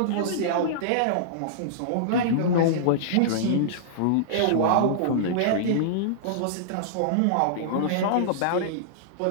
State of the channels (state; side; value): different; both; correlation -0.02